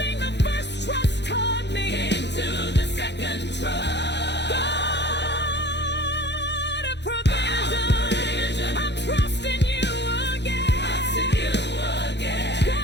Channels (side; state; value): right; late; 0.50 ms